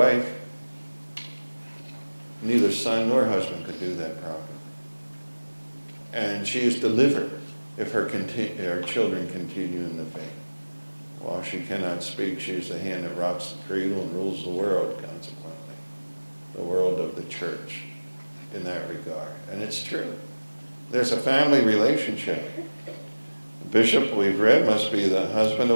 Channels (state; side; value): inverted; both; correlation -1.00